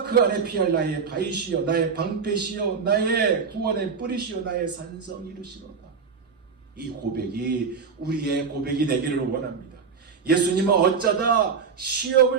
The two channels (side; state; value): left; quieter; 5.7 dB